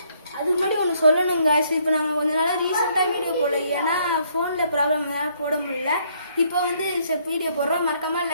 அதுக்கு முன்னாடி ஒன்று சொல்லணுங்க. இப்போ நாங்கள் கொஞ்ச நாளாக ரீசெண்டாக வீடியோ போடல, ஏன்னா ஃபோனில் ப்ராப்ளம் போட முடியல. இப்போ வந்து வீடியோ போடுறோம். மறக்காமல்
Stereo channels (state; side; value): inverted; both; correlation -0.68